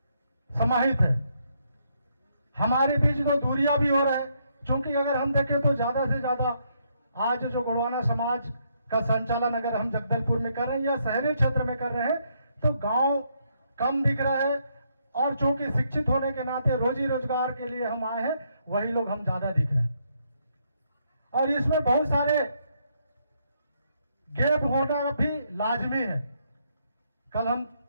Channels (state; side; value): inverted; both; correlation -0.74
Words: समाहित है। हमारे बीच जो दूरियां भी हो रहा है, चूंकि अगर हम देखें तो ज्यादा से ज्यादा आज जो गोंडवाना समाज का संचालन अगर हम जगदलपुर में कर रहे हैं या शहरी क्षेत्र में कर रहे हैं तो गांव कम दिख रहा है, और चूंकि शिक्षित होने के नाते रोजी रोजगार के लिए हम आए हैं, वही लोग हम ज्यादा दिख रहे हैं। और इसमें बहुत सारे गैप होना भी लाजमी है। कल हम